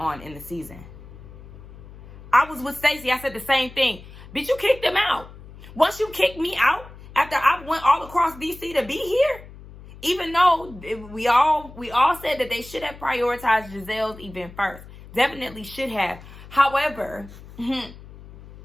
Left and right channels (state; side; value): noise; left; hum, 18 dB below the sound